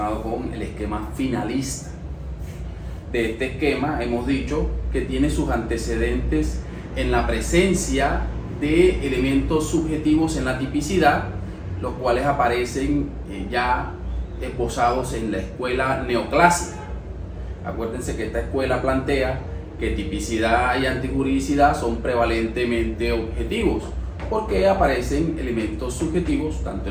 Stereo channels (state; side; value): identical; both; correlation 1.00